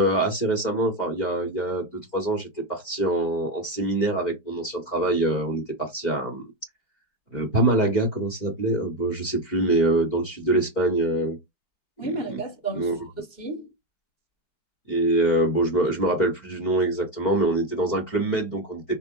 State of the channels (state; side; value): late; right; 4.5 ms